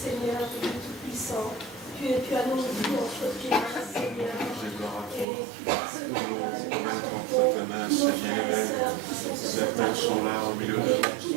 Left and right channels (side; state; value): left; drops out; at 5.2 s